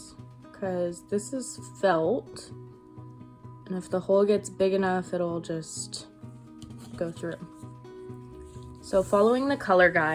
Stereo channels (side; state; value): both; identical; correlation 1.00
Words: because this is felt, and if the hole gets big enough, it'll just go through. So following the color